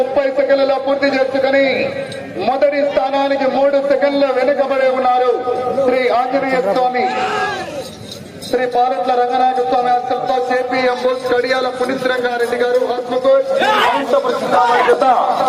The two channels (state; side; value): identical; both; correlation 1.00